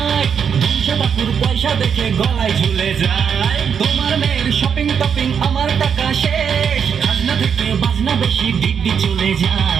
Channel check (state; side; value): quieter; left; 7.2 dB